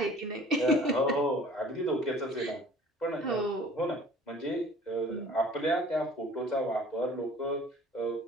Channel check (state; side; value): normal; both; correlation 0.49